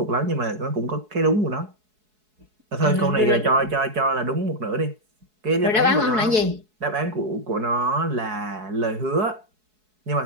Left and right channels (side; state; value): left; late; 4.7 ms